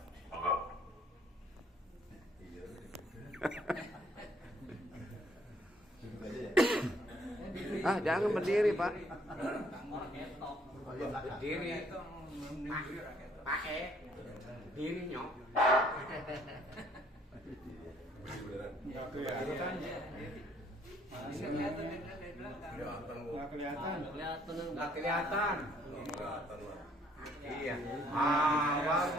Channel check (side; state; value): both; normal; correlation 0.64